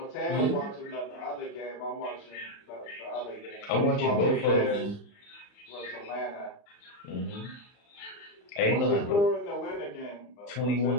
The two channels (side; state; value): right; late; 35 ms